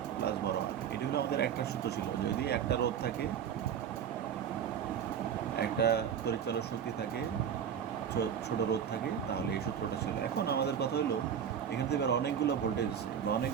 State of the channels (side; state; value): left; quieter; 8.4 dB